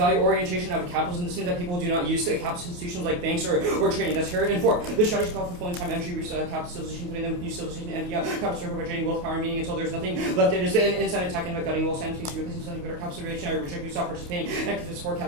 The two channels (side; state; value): left; late; 28 ms